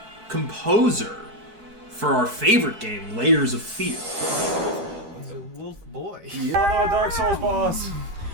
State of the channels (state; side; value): late; left; 12 ms